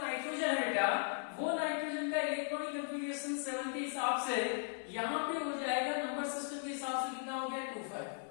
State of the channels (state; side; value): silent; right; digital silence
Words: नाइट्रोजन है बेटा, वो नाइट्रोजन का इलेक्ट्रॉनिक कॉन्फ़िगरेशन 7 के हिसाब से यहाँ पे हो जाएगा, नंबर सिस्टम के हिसाब से कितना हो गया, 25।